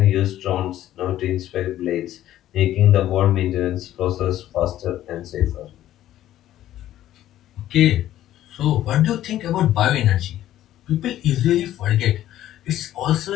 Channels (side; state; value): right; quieter; 13.0 dB